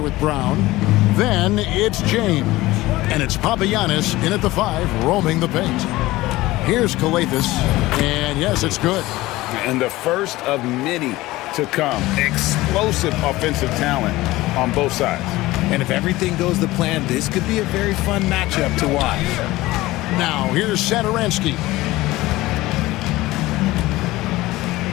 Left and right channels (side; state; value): right; quieter; 18.4 dB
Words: with Brown. Then it's James. And it's Papagiannis in at the 5, roaming the paint. Here's Calathes, and yes, it's good. And the first of many to come. Explosive offensive talent on both sides. And if everything goes to plan, this could be a very fun matchup to watch. Now, here's Satoransky.